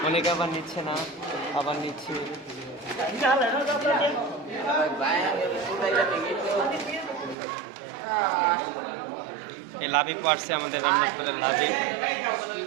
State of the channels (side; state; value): left; drops out; at 7.4 s